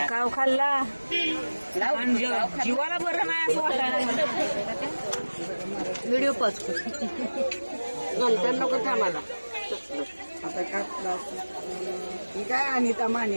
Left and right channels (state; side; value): inverted; both; correlation -1.00